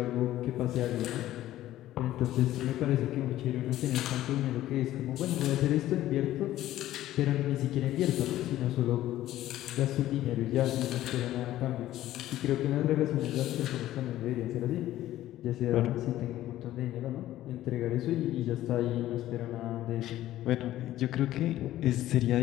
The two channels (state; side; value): quieter; right; 14.1 dB